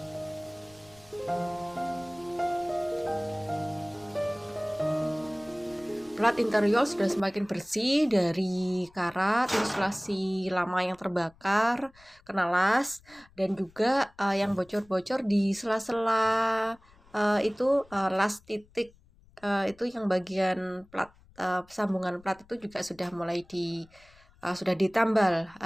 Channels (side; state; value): left; noise; rumble, 28 dB below the sound